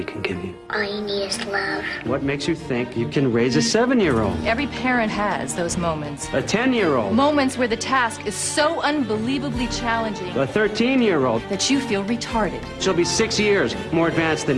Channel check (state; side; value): identical; both; correlation 1.00